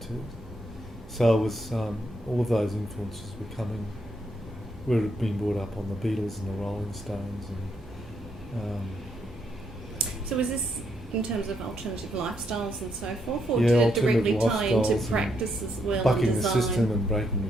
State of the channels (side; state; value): both; normal; correlation 0.76